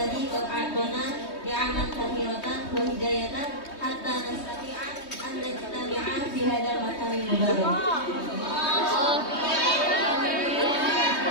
qad a'tana ni'aman katsiratan wa hidayatan hatta nastati'a an najtami'a fi hadzal makan mubarak.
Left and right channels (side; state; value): right; late; 3.2 ms